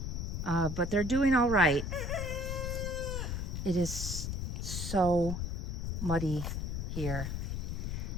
but they're doing all right. It is so muddy here.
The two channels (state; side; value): noise; left; rumble, 2 dB below the sound